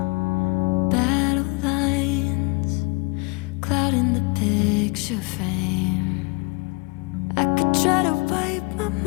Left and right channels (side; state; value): right; quieter; 29.7 dB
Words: Battle lines clouding the picture frame. I could try to wipe my